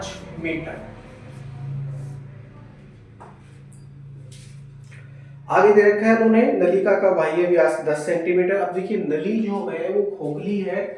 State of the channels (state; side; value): identical; both; correlation 1.00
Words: metre. आगे दे रखा है उन्होंने नलिका का बाह्य व्यास 10 सेंटीमीटर। अब देखिए नली जो है वो खोखली